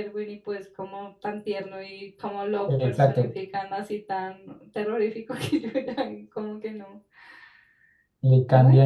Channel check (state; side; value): identical; both; correlation 1.00